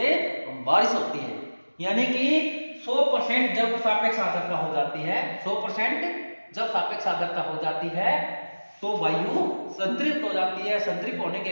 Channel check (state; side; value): inverted; both; correlation -1.00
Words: बारिश होती है। यानी कि 100% जब सापेक्ष आर्द्रता हो जाती है, 100% जब सापेक्ष आर्द्रता हो जाती है तो वायु संतृप्त हो जाती है। संतृप्त होने